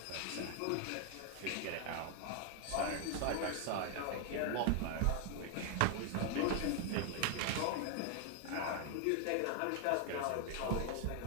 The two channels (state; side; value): different; both; correlation 0.00